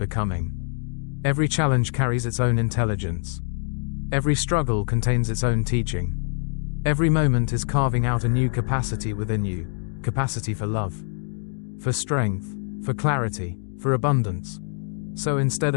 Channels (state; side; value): silent; right; digital silence